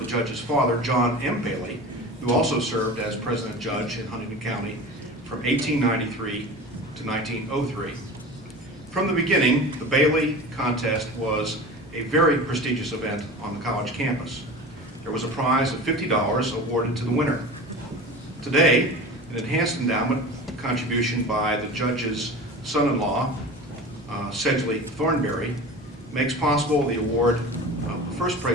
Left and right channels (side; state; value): both; normal; correlation 0.34